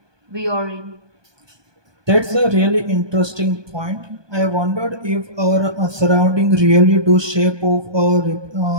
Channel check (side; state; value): left; late; 1.2 ms